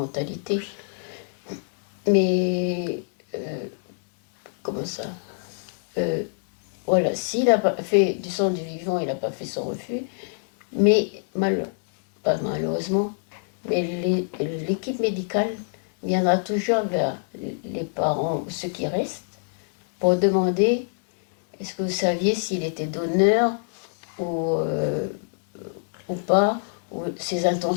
Mais, comment ça? Voilà, s'il a fait du sang du vivant, il n'a pas fait son refus. Mais, pas malheureusement, mais l'équipe médicale viendra toujours vers les parents, ceux qui restent, pour demander est-ce que vous saviez s'il était donneur ou pas, ou ses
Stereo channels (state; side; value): silent; right; digital silence